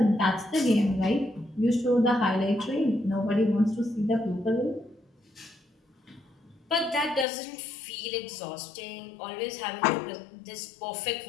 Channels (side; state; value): right; drops out; at 7.2 s